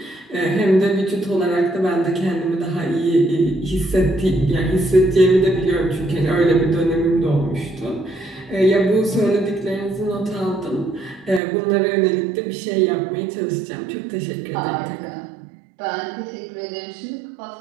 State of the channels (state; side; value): drops out; left; at 11.4 s